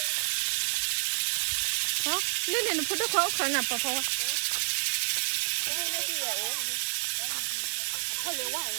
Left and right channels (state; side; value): silent; left; digital silence